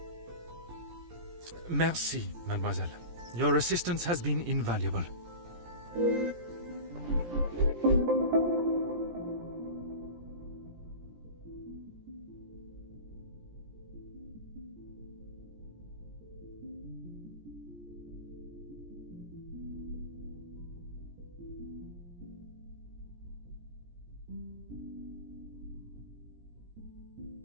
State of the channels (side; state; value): left; late; 17 ms